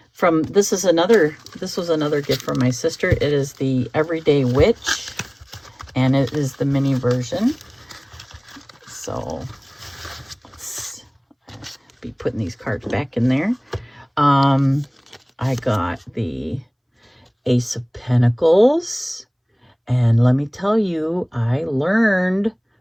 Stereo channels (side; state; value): both; identical; correlation 1.00